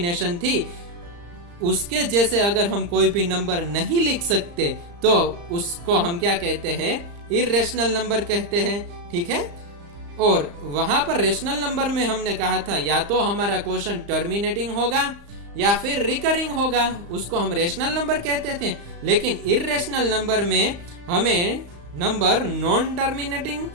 थी उसके जैसे अगर हम कोई भी नंबर नहीं लिख सकते तो उसको हम क्या कहते हैं, इर्रेशनल नंबर कहते हैं। ठीक है, और वहां पर रेशनल नंबर में हमने कहा था या तो हमारा कोशेंट टर्मिनेटिंग होगा या फिर रिकरिंग होगा, उसको हम रेशनल नंबर कहते थे। लेकिन इर्रेशनल नंबर में हमें नंबर नॉन टर्मिनेटिंग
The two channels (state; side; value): late; left; 35 ms